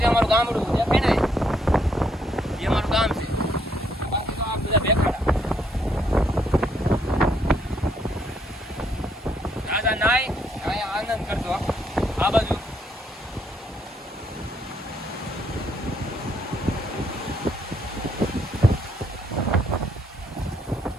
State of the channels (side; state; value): both; normal; correlation 0.71